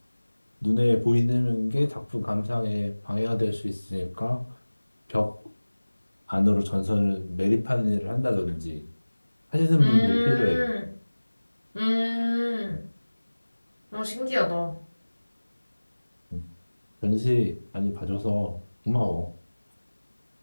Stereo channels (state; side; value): inverted; both; correlation -1.00